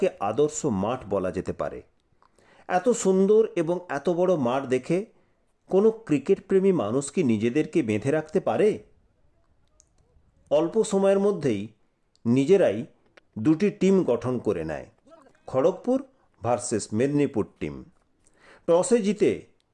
আদর্শ মাঠ বলা যেতে পারে। এত সুন্দর এবং এত বড় মাঠ দেখে কোনো ক্রিকেট প্রেমী মানুষ কি নিজেদেরকে বেঁধে রাখতে পারে? অল্প সময়ের মধ্যেই নিজেরাই দুটি টিম গঠন করে নেয়, খড়গপুর ভার্সেস মেদিনীপুর টিম। টসে জিতে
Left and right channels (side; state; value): both; identical; correlation 1.00